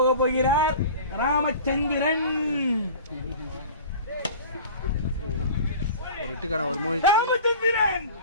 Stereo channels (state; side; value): inverted; both; correlation -0.40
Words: போகிறார் ராமச்சந்திரன். ஒரு இட்டுக்கான ஒரு மூவி. ராமச்சந்திரன்